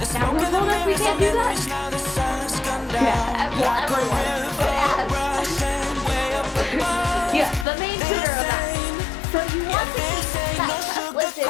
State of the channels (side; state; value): right; drops out; at 7.7 s